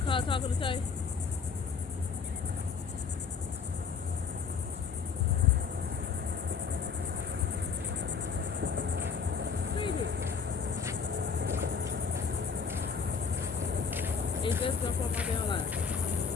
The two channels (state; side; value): quieter; right; 5.8 dB